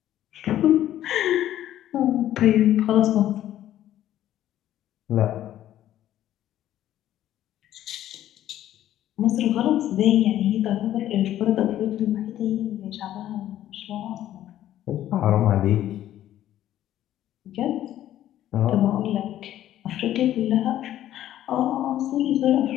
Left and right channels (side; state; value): right; quieter; 12.5 dB